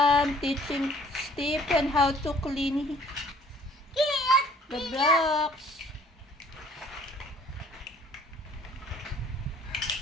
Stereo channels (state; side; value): normal; both; correlation 0.57